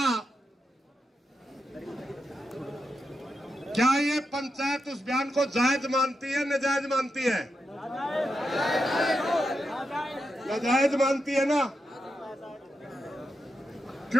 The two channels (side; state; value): both; normal; correlation 0.86